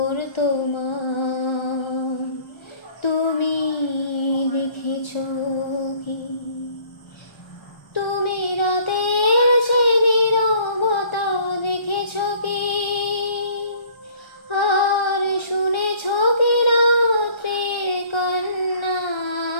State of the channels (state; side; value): late; right; 1.3 ms